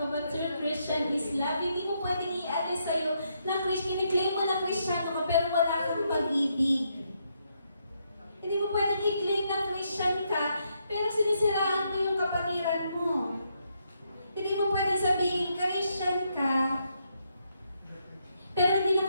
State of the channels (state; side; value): inverted; both; correlation -0.77